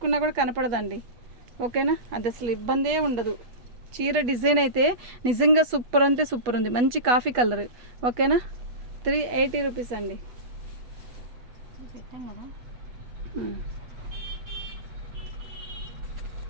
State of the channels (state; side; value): late; left; 8.2 ms